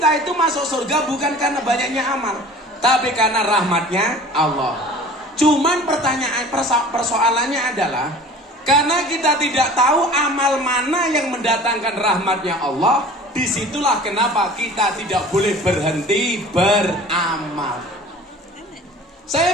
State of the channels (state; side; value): normal; both; correlation 0.43